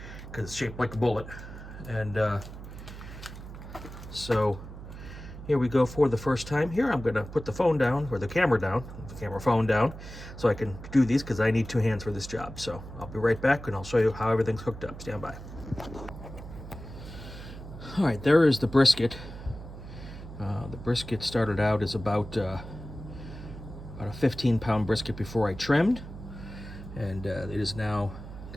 because it's shaped like a bullet. And so here we go for the first time. Here I'm gonna put the phone down, or the camera phone down, so I can do these, because I need 2 hands for this job. So I'll be right back, and I'll show you how everything's hooked up. Stand by. All right, there is the brisket. The brisket started out as about a 15-pound brisket before I trimmed, and it is now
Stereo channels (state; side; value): noise; right; hum, 12 dB below the sound